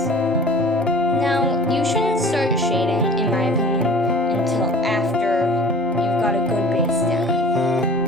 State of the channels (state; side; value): normal; both; correlation 0.44